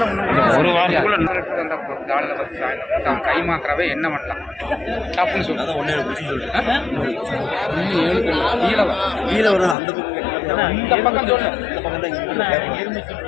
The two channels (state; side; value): drops out; right; at 9.8 s